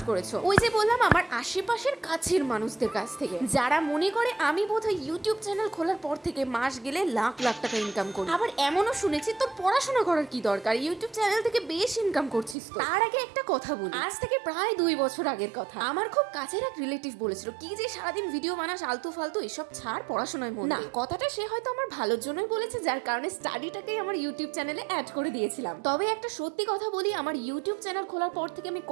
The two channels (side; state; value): left; drops out; at 12.6 s